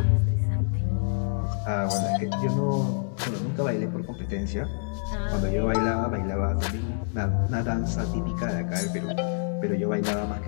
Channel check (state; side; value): silent; right; digital silence